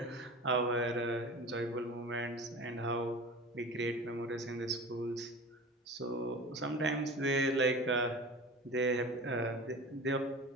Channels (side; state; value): both; normal; correlation 0.35